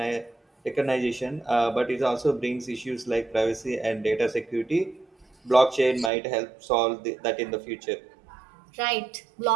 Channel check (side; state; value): left; drops out; at 6.1 s